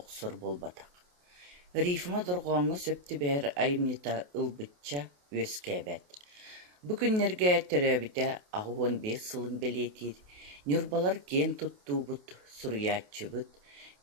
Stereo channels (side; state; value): left; late; 28 ms